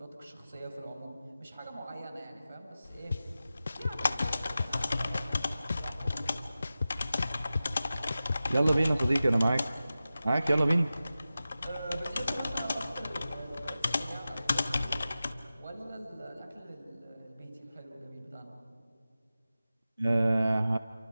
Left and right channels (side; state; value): both; inverted; correlation -0.94